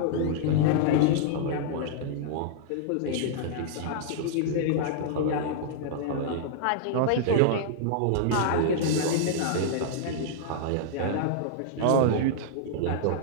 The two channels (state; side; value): different; both; correlation -0.02